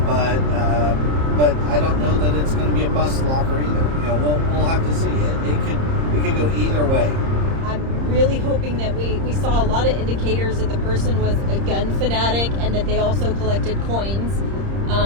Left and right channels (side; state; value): left; late; 30 ms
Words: but I don't know that it's going to be a bust locker either. We'll have to see. It could go either way. I'm really hoping that we saw a lot of indicators that the person was a gun fanatic and that they also collected coins,